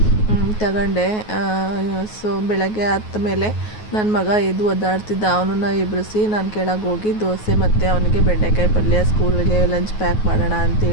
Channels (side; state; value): right; late; 9.4 ms